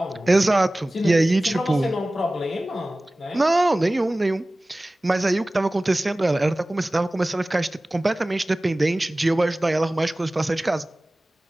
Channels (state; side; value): normal; both; correlation 0.98